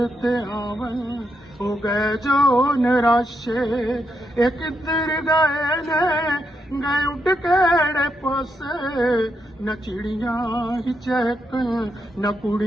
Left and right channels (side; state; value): both; normal; correlation 0.81